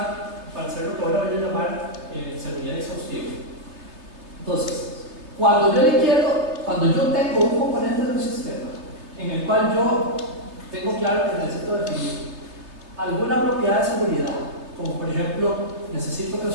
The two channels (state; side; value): late; left; 3.2 ms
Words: para hacer lo que ahora voy a llamar seguridad exhaustiva. Entonces, cuando yo tengo un componente de un sistema en el cual yo tengo claro que necesito definir alguna propiedad de seguridad, como por ejemplo, necesito que